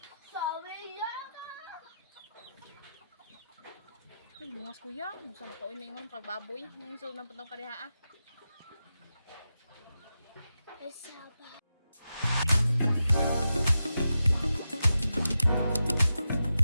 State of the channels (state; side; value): inverted; both; correlation -0.89